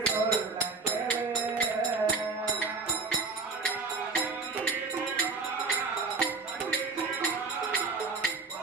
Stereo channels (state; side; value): quieter; left; 4.1 dB